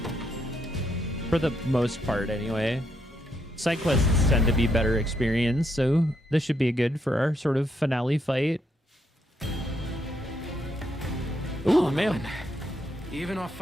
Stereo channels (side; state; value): both; normal; correlation 0.77